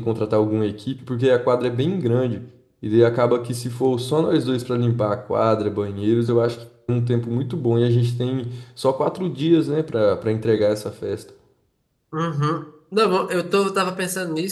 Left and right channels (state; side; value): identical; both; correlation 1.00